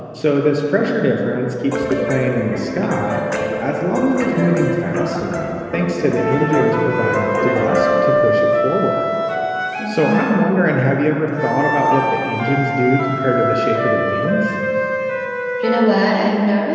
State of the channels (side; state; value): both; identical; correlation 1.00